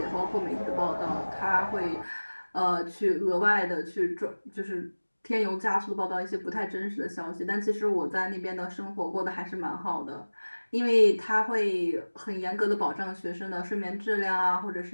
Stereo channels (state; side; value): inverted; both; correlation -1.00